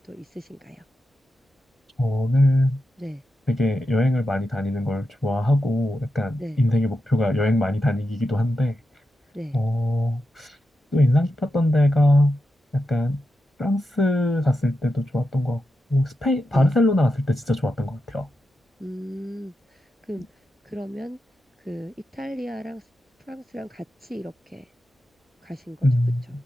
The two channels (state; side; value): normal; both; correlation 0.88